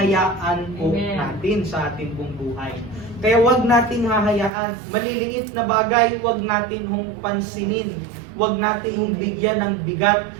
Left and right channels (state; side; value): drops out; left; at 4.5 s